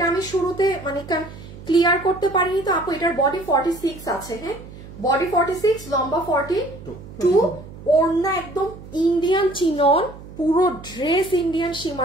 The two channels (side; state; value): right; noise; hum, 16 dB below the sound